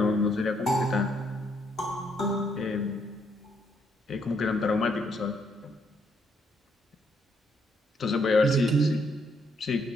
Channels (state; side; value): normal; both; correlation 0.72